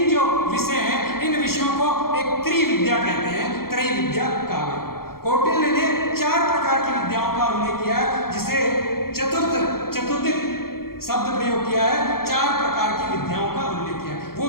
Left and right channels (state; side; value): late; right; 0.93 ms